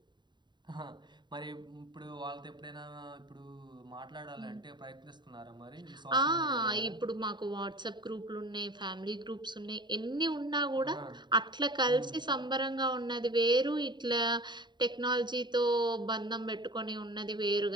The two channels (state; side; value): late; left; 0.22 ms